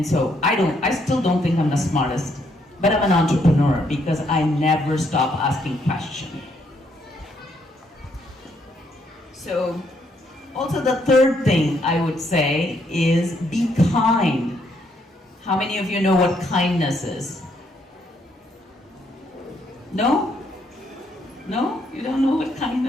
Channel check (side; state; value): both; normal; correlation 0.72